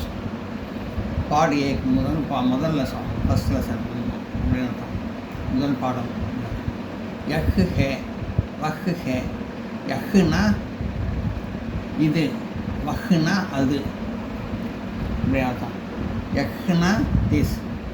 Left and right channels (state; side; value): identical; both; correlation 1.00